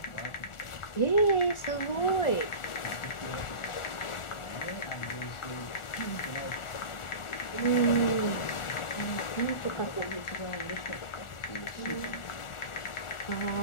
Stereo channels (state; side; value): late; right; 1.4 ms